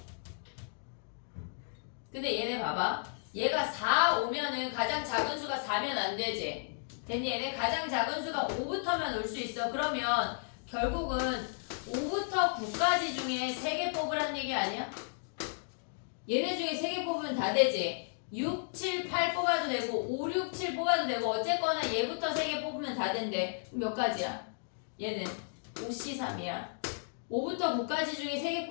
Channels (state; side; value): silent; right; digital silence